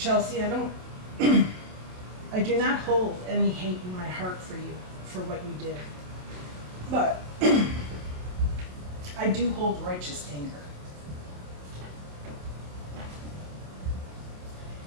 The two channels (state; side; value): late; left; 27 ms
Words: I do not hold any hate in my heart for you, for what you did. But I do hold righteous anger.